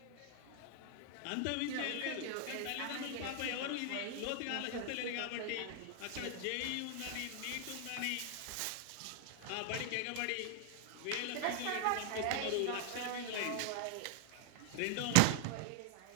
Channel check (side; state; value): both; different; correlation 0.00